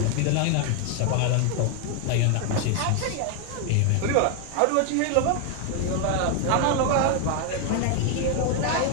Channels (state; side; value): different; both; correlation 0.01